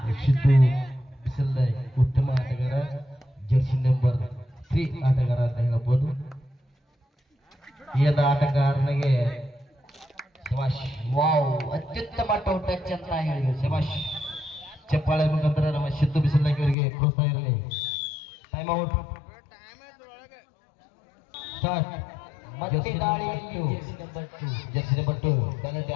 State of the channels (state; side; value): drops out; right; at 16.8 s